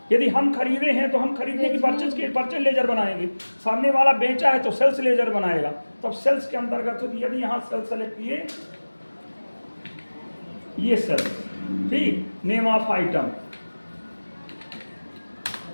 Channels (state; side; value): inverted; both; correlation -1.00